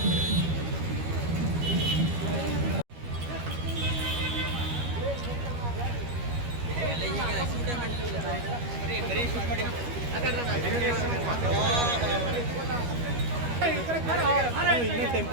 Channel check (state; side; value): late; left; 13 ms